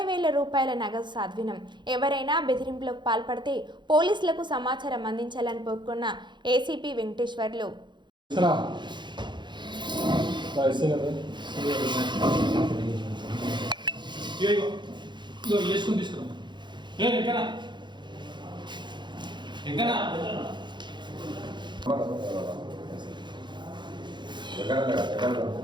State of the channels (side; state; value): left; late; 0.22 ms